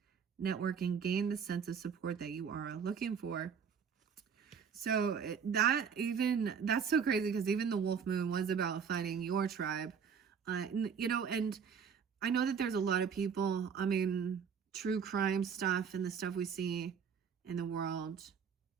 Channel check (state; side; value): quieter; left; 6.8 dB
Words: network, and gain the sense of support that you are looking for. So that's so crazy because even the Wolf Moon was about finding your tribe. You know, and I know that there's a lot of people, I mean, true crime stuff and the stuff we see in the world,